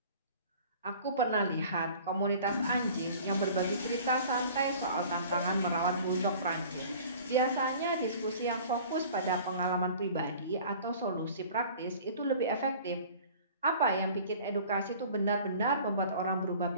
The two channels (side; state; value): both; inverted; correlation -0.46